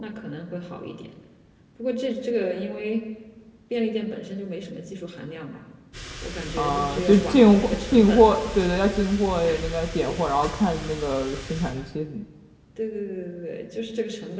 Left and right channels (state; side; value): identical; both; correlation 1.00